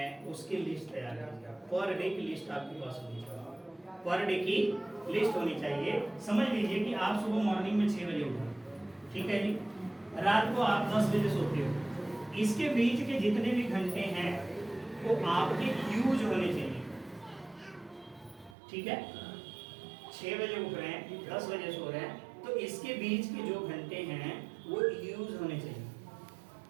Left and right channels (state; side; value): drops out; left; at 18.6 s